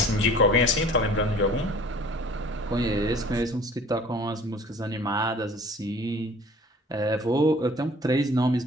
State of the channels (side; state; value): both; normal; correlation 0.48